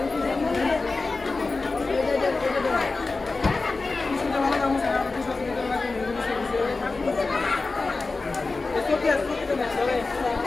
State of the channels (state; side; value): quieter; right; 3.7 dB